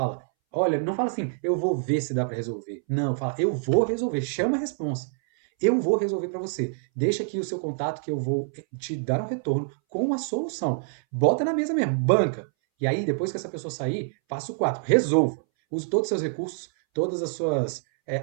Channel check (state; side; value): silent; left; 61 dB below the other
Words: Olha, não fala assim, eu vou ver se dá para resolver. Não, fala, eu vou resolver, chama a responsa. Eu vou resolver para você. Deixa aqui o seu contato que eu vou te dar um retorno com uma solução. Bota na mesa mesmo, banca. E aí, depois que essa pessoa sair, passo 4, resolva. Use todos os seus recursos, todas as suas